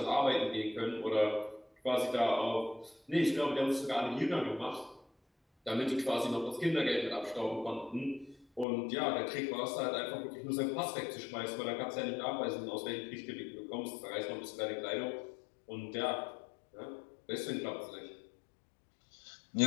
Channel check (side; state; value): right; drops out; at 8.7 s